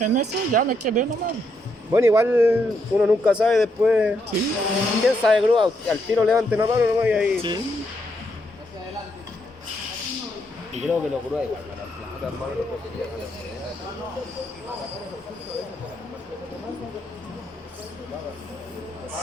eso, ya me quedé nomás. Bueno, igual uno nunca sabe después. Sí, ¿Quién sabe grúa? Al tiro levante una mano nomás y ahí. sí. Y creo que los grúas igual van a plata, hermano, no puedo pillar.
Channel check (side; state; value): both; normal; correlation 0.77